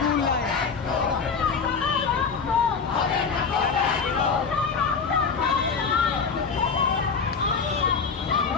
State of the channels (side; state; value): right; quieter; 5.5 dB